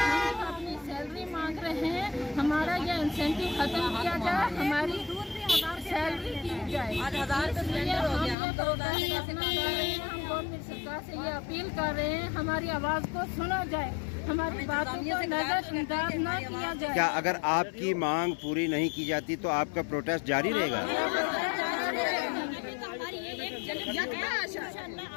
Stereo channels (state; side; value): drops out; right; at 8.3 s